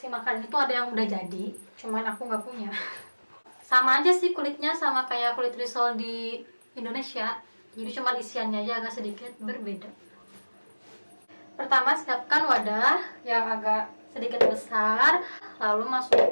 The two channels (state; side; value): inverted; both; correlation -1.00